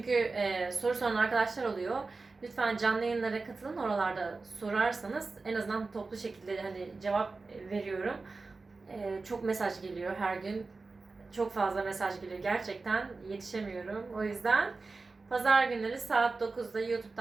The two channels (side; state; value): left; quieter; 3.9 dB